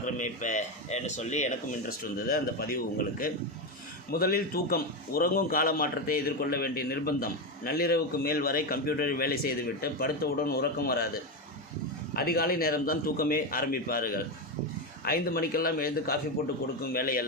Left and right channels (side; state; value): both; normal; correlation 0.12